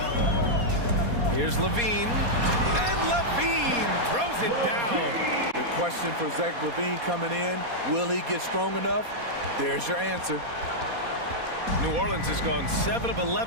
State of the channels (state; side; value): late; left; 4.2 ms